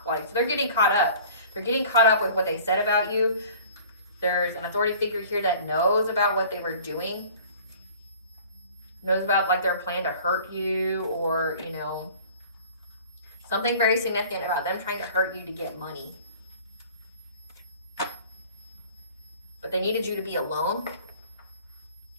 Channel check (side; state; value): both; inverted; correlation -0.47